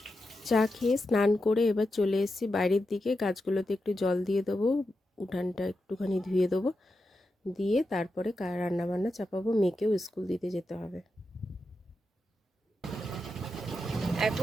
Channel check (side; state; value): both; normal; correlation 0.88